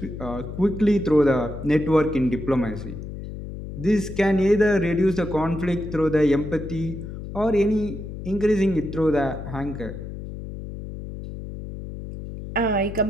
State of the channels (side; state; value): left; noise; hum, 9 dB below the sound